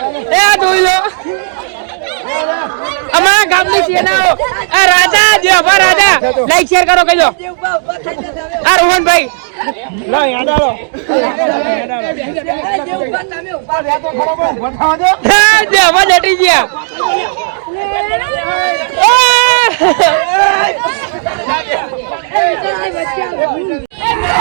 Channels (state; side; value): silent; left; 73 dB below the other